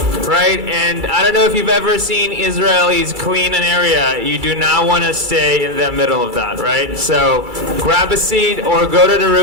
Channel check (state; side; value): late; left; 2.3 ms